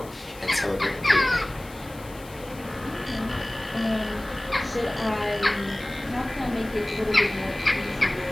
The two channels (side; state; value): left; noise; hiss, 21 dB below the sound